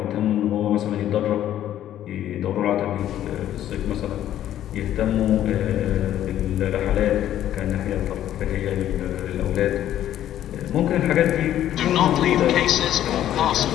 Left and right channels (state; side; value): quieter; right; 11.8 dB